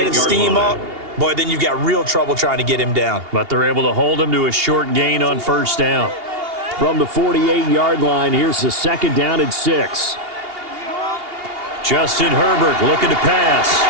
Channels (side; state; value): left; late; 2.8 ms